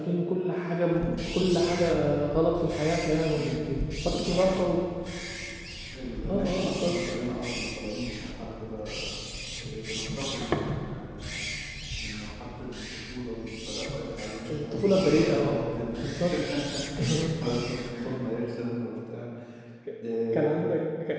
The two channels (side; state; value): both; identical; correlation 1.00